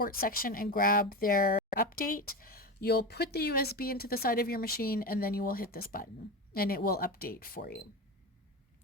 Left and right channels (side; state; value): both; normal; correlation 0.21